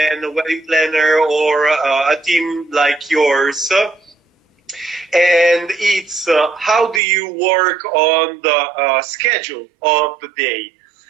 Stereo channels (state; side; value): drops out; left; at 7.0 s